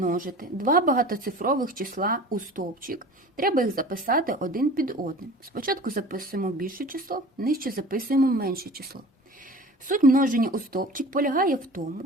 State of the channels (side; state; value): both; normal; correlation 0.41